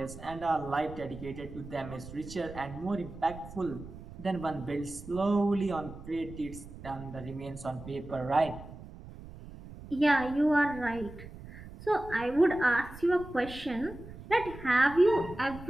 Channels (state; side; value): noise; right; rumble, 15 dB below the sound